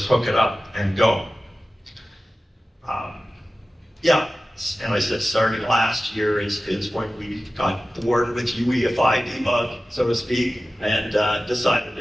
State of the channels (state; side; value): normal; both; correlation 0.96